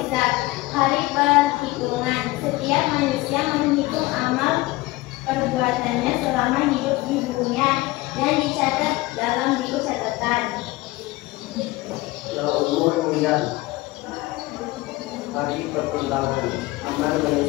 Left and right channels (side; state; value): right; quieter; 19.8 dB